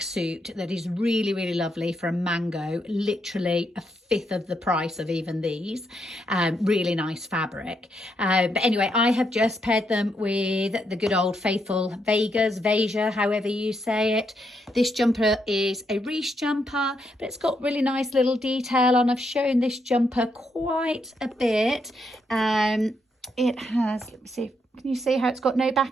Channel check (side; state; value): both; normal; correlation 0.78